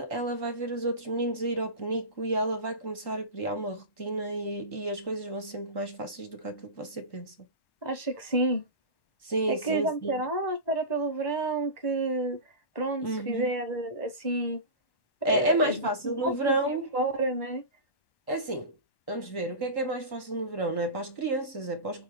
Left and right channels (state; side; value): late; right; 1.1 ms